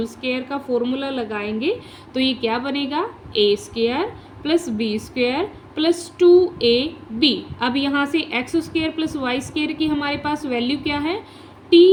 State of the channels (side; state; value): both; identical; correlation 1.00